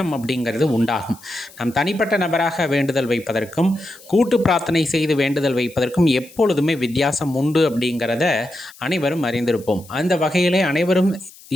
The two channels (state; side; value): noise; left; hiss, 22 dB below the sound